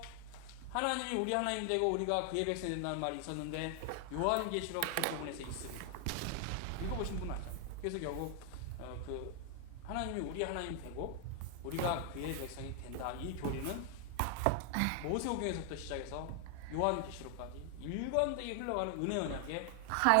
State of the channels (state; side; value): different; both; correlation 0.00